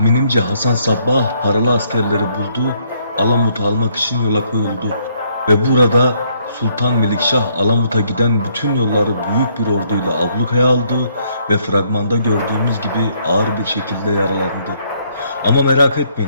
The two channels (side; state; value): both; inverted; correlation -0.69